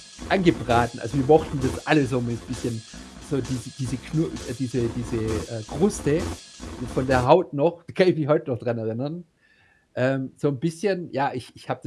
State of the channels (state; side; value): identical; both; correlation 1.00